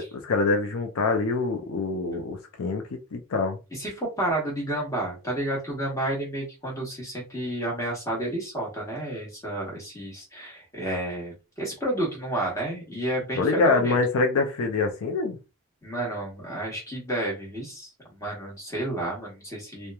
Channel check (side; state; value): both; normal; correlation 0.12